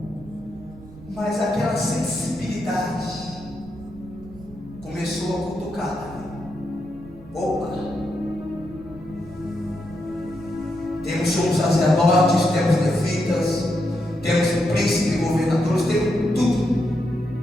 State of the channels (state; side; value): noise; right; rumble, 19 dB below the sound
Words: Mas aquela sensibilidade começou a cutucar. Opa! Temos sumos sacerdotes, temos levitas, temos príncipes, governadores, temos tudo.